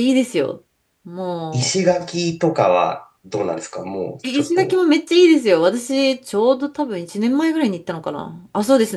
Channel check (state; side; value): identical; both; correlation 1.00